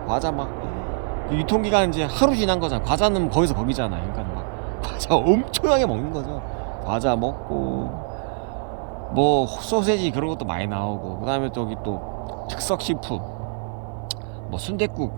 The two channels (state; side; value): silent; left; 55 dB below the other